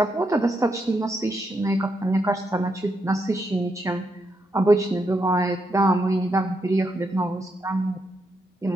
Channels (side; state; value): both; normal; correlation 0.81